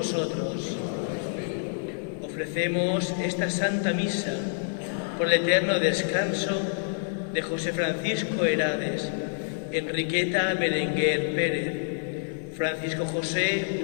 Ofrecemos esta Santa Misa por el eterno descanso de José Francisco Herades, Enriqueta Berenguer Pérez, Francisco José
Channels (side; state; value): right; silent; 60 dB below the other